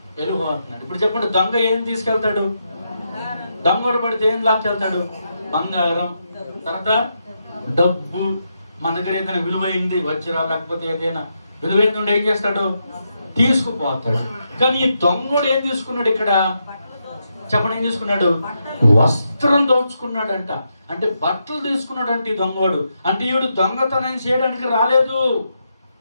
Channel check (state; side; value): inverted; both; correlation -0.83